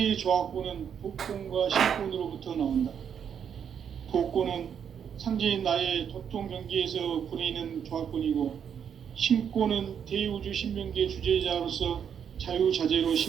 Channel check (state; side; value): quieter; left; 8.0 dB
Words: 조화권은 도권과 신권으로부터 나온다. 도권은 상제인 나의 도통 경계에서 보내는 조화권이고 신권은 대우주 신명계 주제자로서 자유자재로